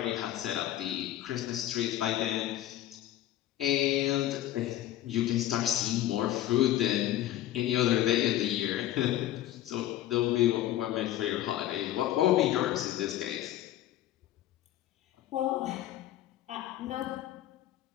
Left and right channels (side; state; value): right; quieter; 13.4 dB